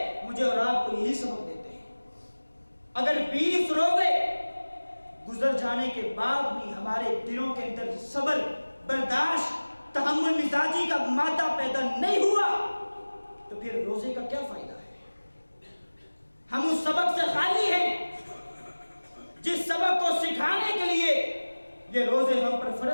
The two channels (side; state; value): both; inverted; correlation -1.00